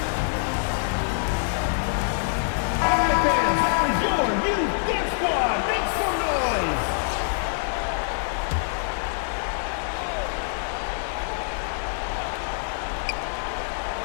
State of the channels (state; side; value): silent; right; digital silence